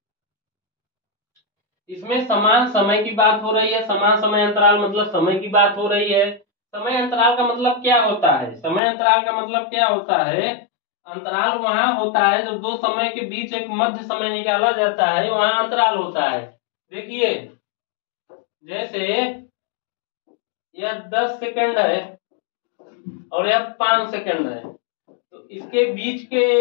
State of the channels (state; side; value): drops out; right; at 8.8 s